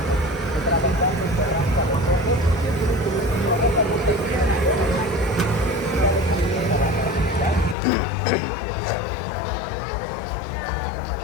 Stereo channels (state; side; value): drops out; right; at 7.8 s